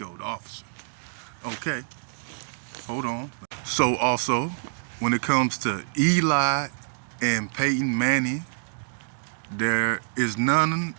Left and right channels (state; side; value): silent; left; digital silence